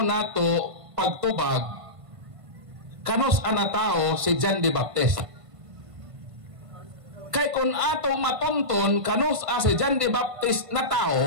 nato pagtubag kanos ana tao si John the Baptist. Kay kung atong matunton kanos si John the Baptist na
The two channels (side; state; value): left; late; 1.5 ms